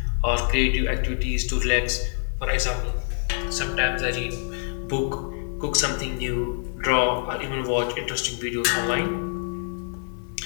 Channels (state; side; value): silent; right; 61 dB below the other